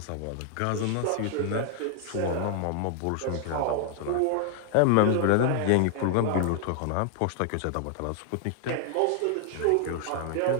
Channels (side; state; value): both; different; correlation 0.00